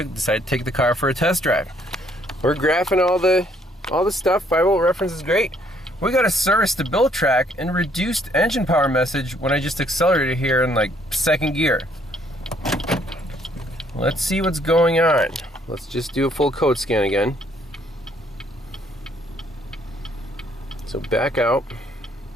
to take the car for a test drive. We're graphing all the stuff. 5-volt reference is great. We got a service to build track and reduced engine power message when I just accelerated here in like 2nd gear. Let's see what's going on. Let's just do a full code scan again. So back out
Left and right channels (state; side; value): normal; both; correlation 0.66